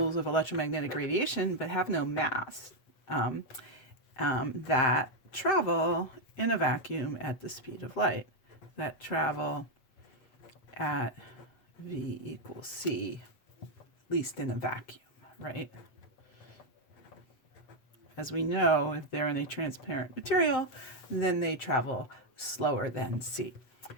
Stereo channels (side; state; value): right; late; 7.7 ms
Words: of electromagnetic radiation but have no mass that travel in a vacuum at the speed of light, that travel at v equals c, at least in a vacuum, right? As we know, if they're in a transparent material, then they travel slower than c.